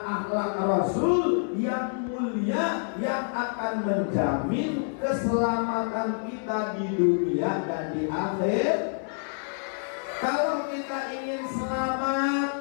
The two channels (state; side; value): silent; right; 60 dB below the other